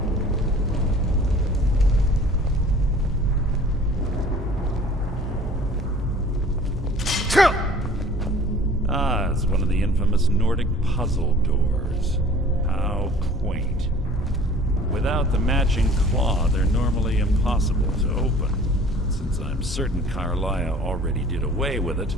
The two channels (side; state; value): both; normal; correlation 0.49